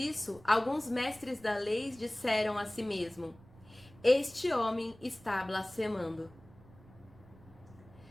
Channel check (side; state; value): right; noise; rumble, 23 dB below the sound